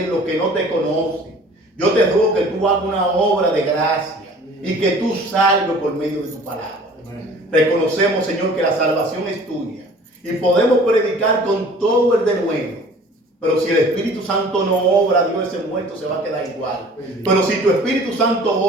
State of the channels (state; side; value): normal; both; correlation 0.48